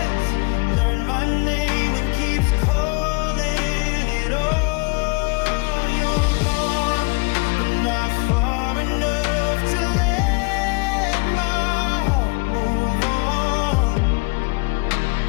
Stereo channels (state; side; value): quieter; right; 30.2 dB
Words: learned my name and keeps calling it all. You're gone, but not far enough to let my heart move on.